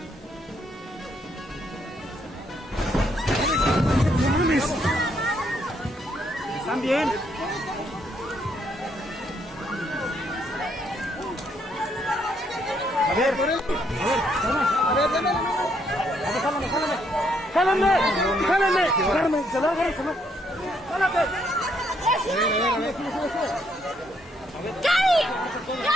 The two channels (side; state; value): both; normal; correlation 0.72